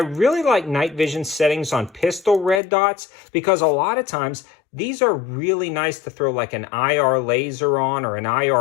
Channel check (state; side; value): drops out; right; at 2.6 s